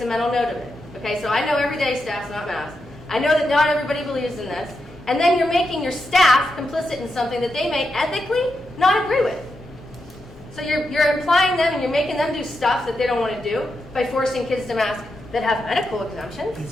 a mental note of it. Okay, so I know every day staff's not masked. I know that not everybody believes in this. And then you're making your staff complicit in something that they may ethically not agree with. So you're implying them and you're making them do stuff that they don't want to do by forcing kids to mask that have medical exemptions.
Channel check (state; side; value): normal; both; correlation 0.86